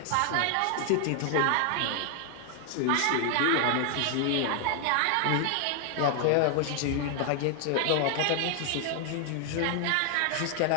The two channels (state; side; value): different; both; correlation 0.00